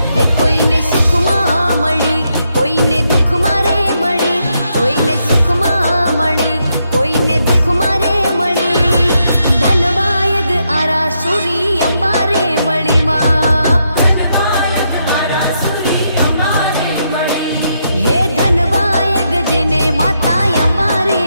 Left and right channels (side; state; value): both; inverted; correlation -0.80